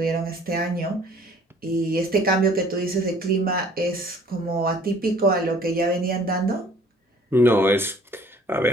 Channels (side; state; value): both; normal; correlation 0.55